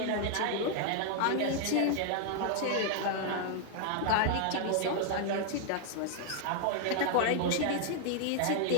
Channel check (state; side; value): different; both; correlation 0.00